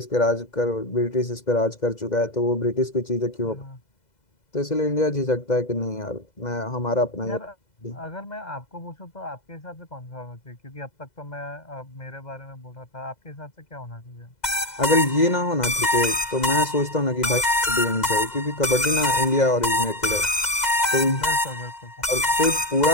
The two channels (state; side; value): late; right; 2.0 ms